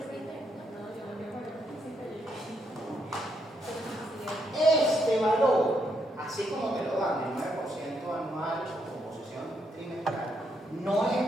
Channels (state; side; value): normal; both; correlation 0.77